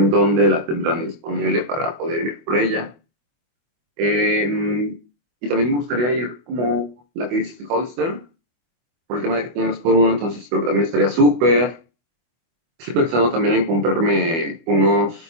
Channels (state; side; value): late; left; 24 ms